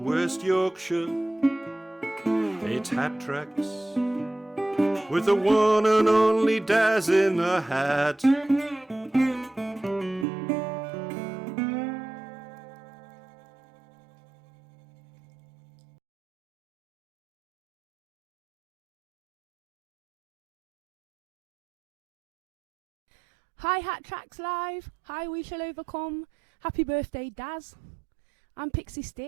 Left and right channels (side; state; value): left; drops out; at 10.2 s